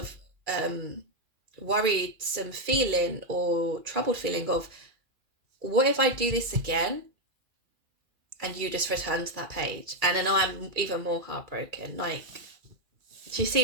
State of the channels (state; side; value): late; left; 2.4 ms